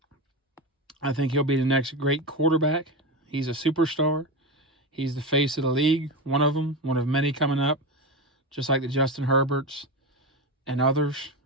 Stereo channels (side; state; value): both; normal; correlation 0.18